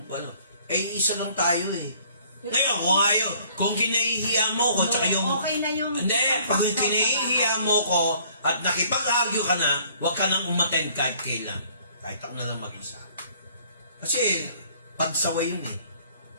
ano. Isa lang tayo eh. Ngayon, kung kinahihiya mo ko, tsaka yung... Okay na yung... Hindi, pag kinahihiya mo ko at nakipag-argue ka na, huwag ka nang umattend kahit kailan. Kahit ako na lang mag-isa. Kasi, pagsaway yun eh.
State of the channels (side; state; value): both; inverted; correlation -0.58